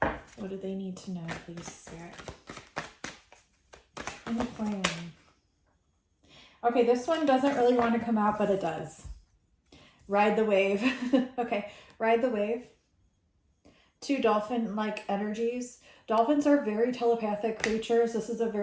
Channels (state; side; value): identical; both; correlation 1.00